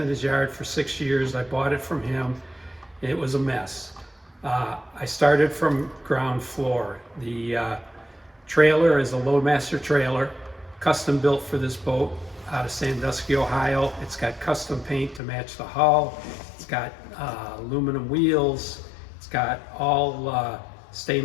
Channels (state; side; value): drops out; right; at 15.2 s